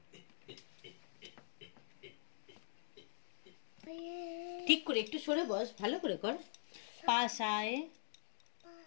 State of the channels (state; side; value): silent; right; digital silence